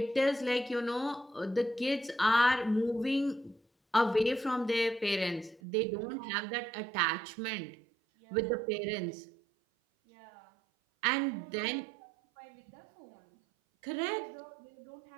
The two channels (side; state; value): left; drops out; at 5.6 s